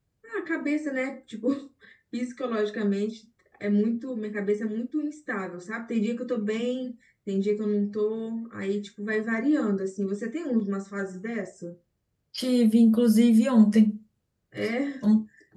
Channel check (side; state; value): both; identical; correlation 1.00